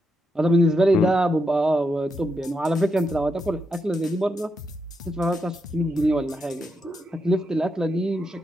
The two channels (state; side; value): normal; both; correlation 0.83